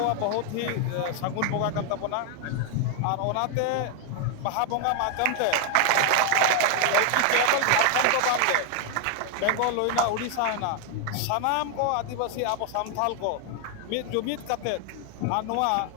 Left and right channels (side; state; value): both; different; correlation 0.00